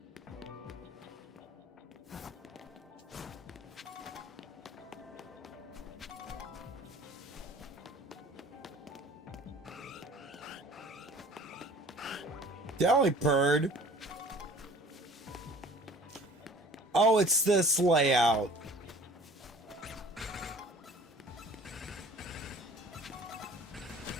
Delibird. Oh, it's this layout.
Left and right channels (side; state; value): both; normal; correlation 0.48